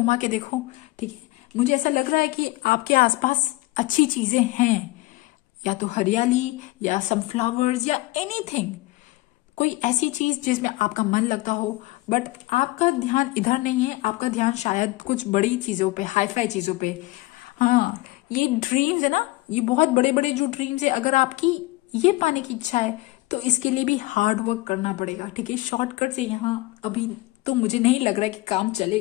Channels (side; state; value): right; quieter; 20.1 dB